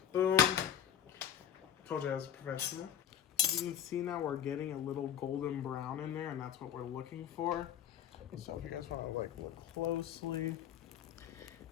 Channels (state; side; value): quieter; right; 9.8 dB